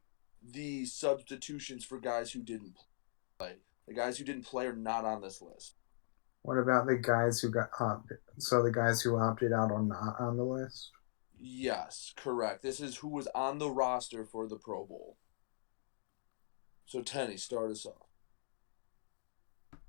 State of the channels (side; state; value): right; silent; digital silence